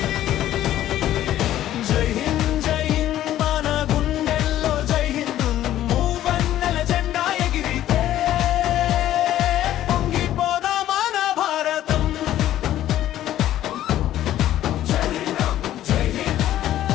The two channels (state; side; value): quieter; right; 12.8 dB